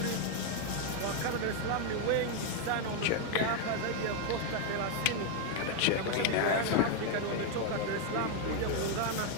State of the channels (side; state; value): both; different; correlation 0.01